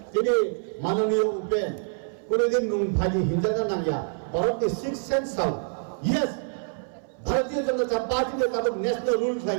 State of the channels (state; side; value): silent; left; 58 dB below the other